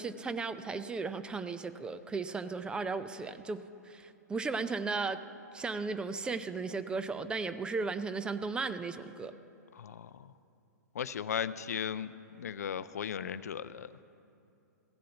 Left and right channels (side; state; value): both; normal; correlation 0.46